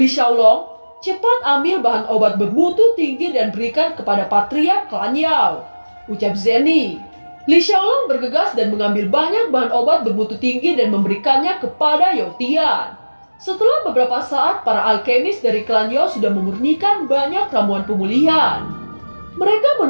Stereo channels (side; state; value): both; inverted; correlation -1.00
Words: Xiaolong, cepat ambil bahan obat bermutu tinggi dan berikan kepada Patriark klan Yao. Ucap Zenny. Li Xiaolong bergegas dan mengambil banyak bahan obat bermutu tinggi dan memberikannya kepada Yotian. Setelah beberapa saat, para alkemis dari klan Yao sudah memurnikan banyak ramuan pemulihan. Mereka